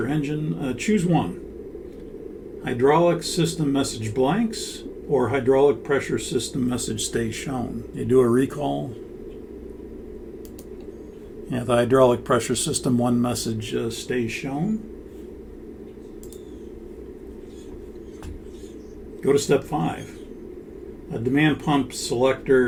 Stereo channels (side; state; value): both; identical; correlation 1.00